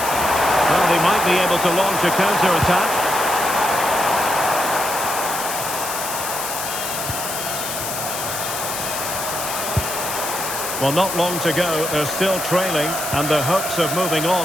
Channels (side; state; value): left; noise; hiss, 5 dB below the sound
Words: they might be able to launch a counter-attack. Well, not long to go. They're still trailing, and their hopes of moving